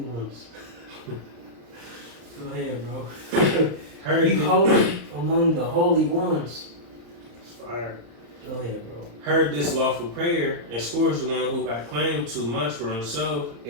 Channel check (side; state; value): left; late; 35 ms